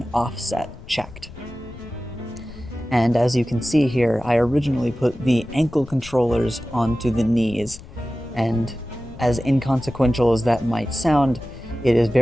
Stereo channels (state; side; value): noise; left; rumble, 17 dB below the sound